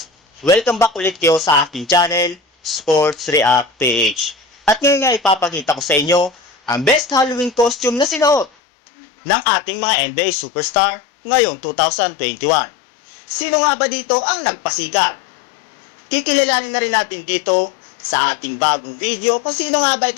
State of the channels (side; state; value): right; drops out; at 8.5 s